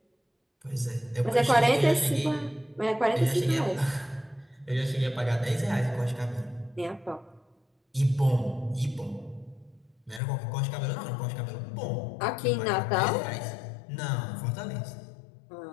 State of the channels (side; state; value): right; drops out; at 10.2 s